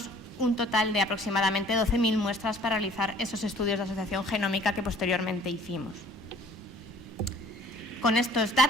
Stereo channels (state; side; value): normal; both; correlation 0.53